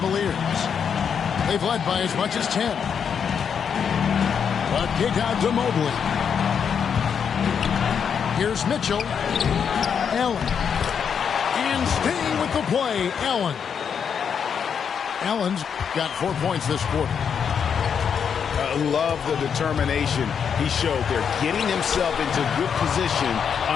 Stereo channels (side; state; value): right; quieter; 7.2 dB